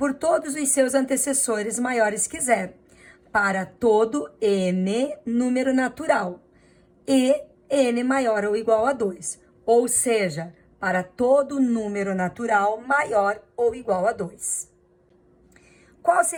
todos os seus antecessores maiores que zero, para todo n número natural, e n maior ou igual a 2, ou seja, para todo número natural maior ou igual a 2. Qual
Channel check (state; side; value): identical; both; correlation 1.00